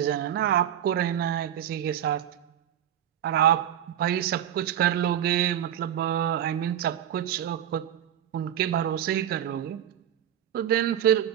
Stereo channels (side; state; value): left; quieter; 10.5 dB